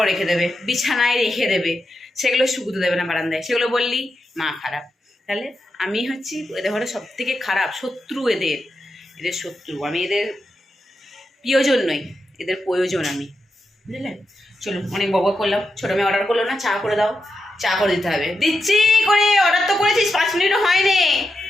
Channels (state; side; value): normal; both; correlation 0.87